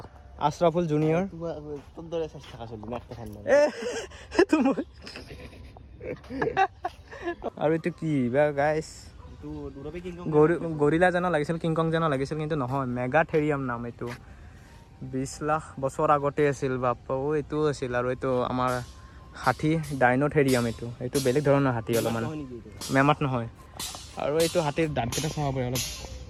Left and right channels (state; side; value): identical; both; correlation 1.00